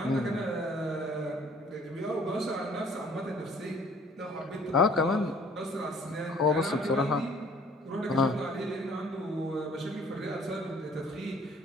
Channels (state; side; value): normal; both; correlation 0.56